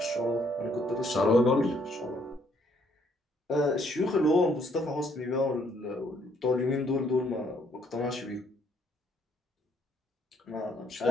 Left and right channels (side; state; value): both; normal; correlation 0.68